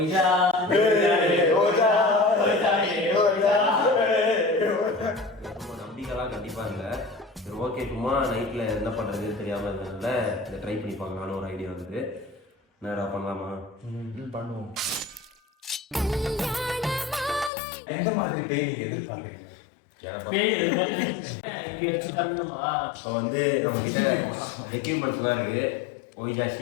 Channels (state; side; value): drops out; right; at 17.5 s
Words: நம்பிக்கைலாம் கண்டிப்பாக இல்லை. சரி ஓகே, சும்மா நைட்டில் என்ன பண்ணுறதுன்னு தெரியாமல் இருந்ததுனால இதை ட்ரை பண்ணி பார்க்கலான்னு ஒரு ஐடியா வந்தது. என்னடா பண்ணலாமா? பண்ணுவோம். எந்த மாதிரி பேய் எதிர்பார்க்குறீங்க? இப்போ வந்து நம்மக்கிட்ட எக்யூப்மெண்ட்ஸ்லாம் இருக்குது. ஒய்ஜா